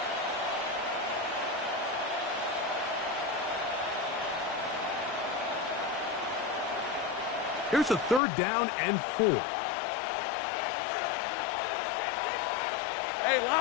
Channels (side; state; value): right; drops out; at 8.2 s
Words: Here's a third down and 4. Hey,